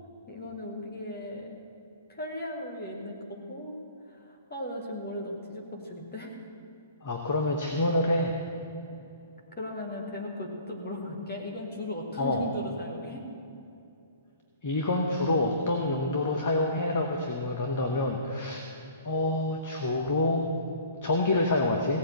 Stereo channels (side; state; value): both; inverted; correlation -0.47